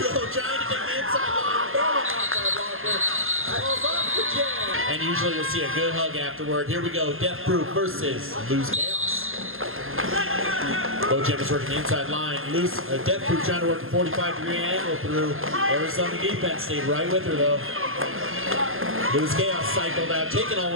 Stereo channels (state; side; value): late; left; 0.60 ms